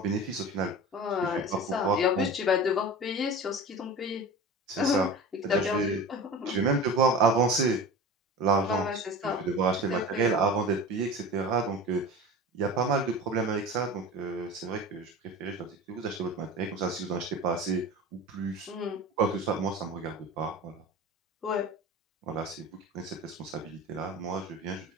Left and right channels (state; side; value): normal; both; correlation 0.33